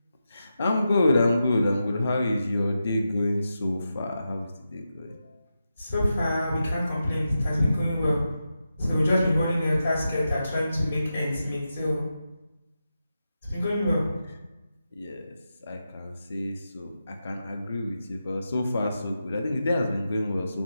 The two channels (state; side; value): inverted; both; correlation -0.89